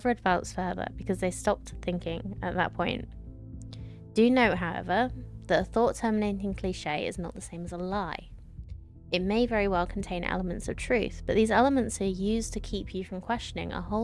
advanced further because they stopped thinking at that point. Do note, however, that a thought-terminating cliche is not the same as a lie. It may very well contain elements of truth, but these elements are used to keep you from questioning a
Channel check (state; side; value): identical; both; correlation 1.00